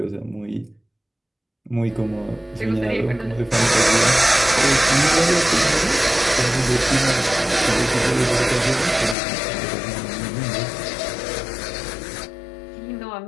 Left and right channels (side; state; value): right; drops out; at 9.2 s